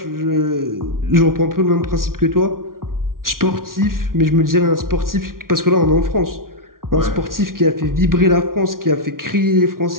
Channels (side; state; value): left; late; 0.92 ms